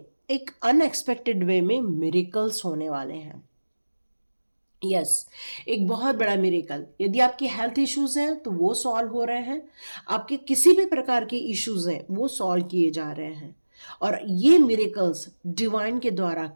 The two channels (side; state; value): both; inverted; correlation -1.00